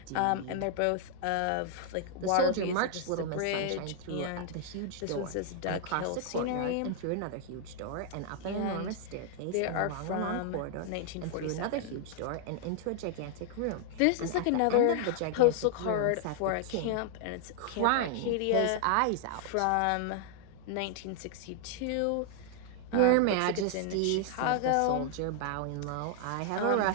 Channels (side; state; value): both; different; correlation 0.00